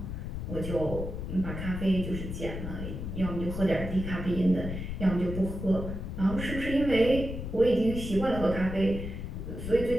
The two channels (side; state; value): left; noise; rumble, 6 dB below the sound